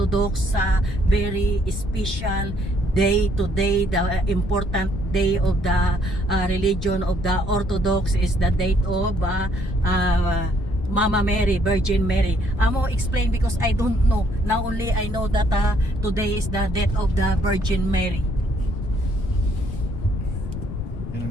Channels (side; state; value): left; noise; rumble, 7 dB below the sound